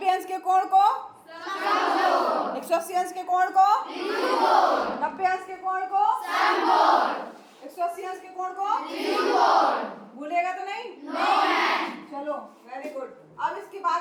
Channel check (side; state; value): both; identical; correlation 1.00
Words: अंश के कोण को 180 अंश के कोण को 90 अंश के कोण को 180 अंश के कोण को भूलेगा तो नहीं? चलो वेरी गुड। अब इसके बाद